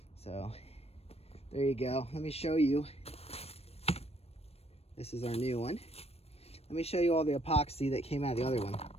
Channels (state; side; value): late; right; 0.29 ms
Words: So there you go. Let me show you. This is our new one. Let me show you all the epoxy that came out of the other one.